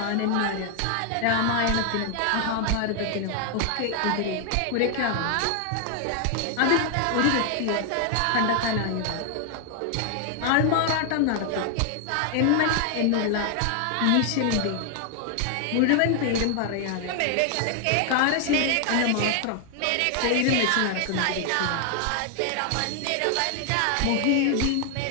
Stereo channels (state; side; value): different; both; correlation 0.00